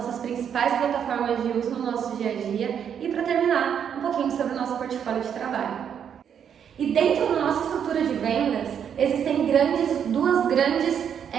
principais plataformas de uso no nosso dia a dia e para terminar um pouquinho sobre o nosso portfólio de trabalho. E dentro da nossa estrutura de vendas existem duas grandes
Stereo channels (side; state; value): left; quieter; 8.2 dB